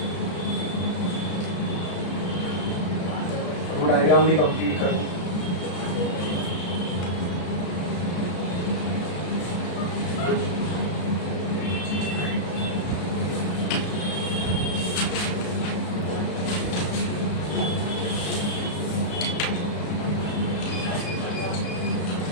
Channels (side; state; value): right; late; 33 ms